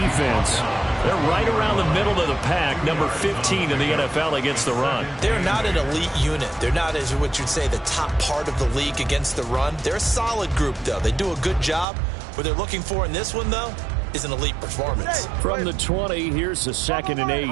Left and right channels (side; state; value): left; drops out; at 11.9 s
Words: they're right around the middle of the pack, number 15 in the NFL against the run. They're not an elite unit. They're not, as what you'd say, the top part of the league against the run. They're a solid group, though. They do a good job. What they're looking for in this one, though, is an elite performance. From the 20, here's the 2nd and 8.